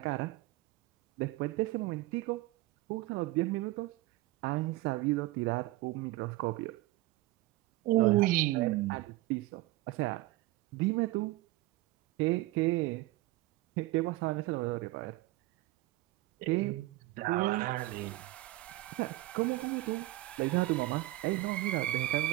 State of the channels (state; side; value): quieter; left; 18.6 dB